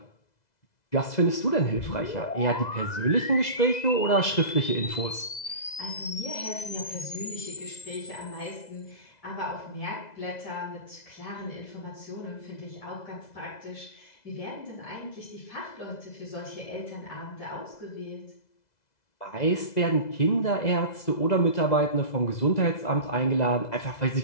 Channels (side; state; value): right; late; 2.0 ms